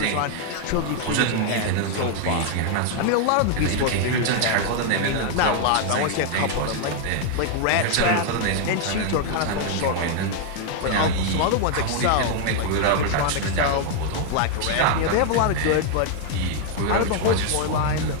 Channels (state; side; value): different; both; correlation 0.00